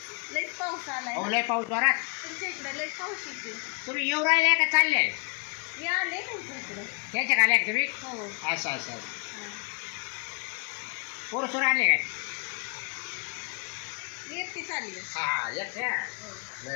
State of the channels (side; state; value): right; quieter; 37.4 dB